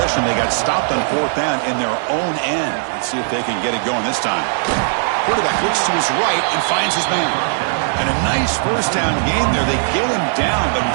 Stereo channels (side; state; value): left; silent; digital silence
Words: they got stopped on 4th down in their own end. Let's see if they can get it going this time. Quarterback looks to his right and finds his man. And a nice first down game there. They get him down, but